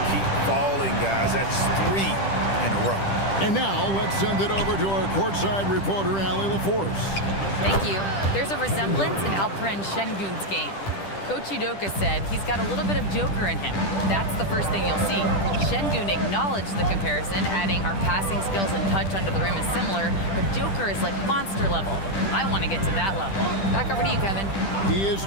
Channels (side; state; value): right; late; 10 ms